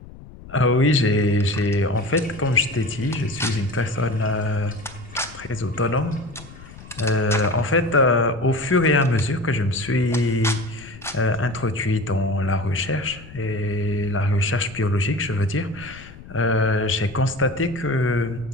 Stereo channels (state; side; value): noise; left; rumble, 18 dB below the sound